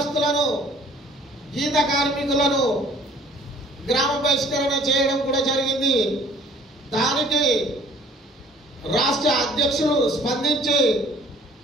గీత కార్మికులను గ్రామ బహిష్కరణ చేయడం కూడా జరిగింది। దానికి రాష్ట్ర అధ్యక్షులు స్పందించి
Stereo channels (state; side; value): normal; both; correlation 0.54